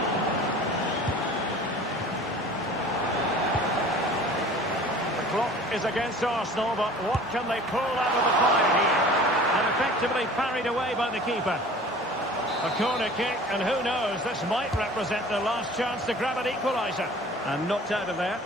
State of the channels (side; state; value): both; normal; correlation 0.45